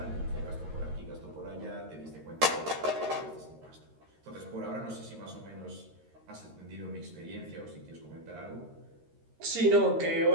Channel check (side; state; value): left; late; 13 ms